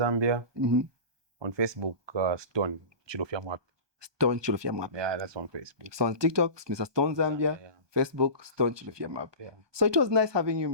On Facebook, Stone Chilofia Mwap. Stone Chilofia Map. Yeah, that's on Facebook. So on TikTok, Mr. Stone Zambia. Yeah. Facebook, Stone Chilofia Map. Yeah. So it was nice having you,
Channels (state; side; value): late; left; 1.2 ms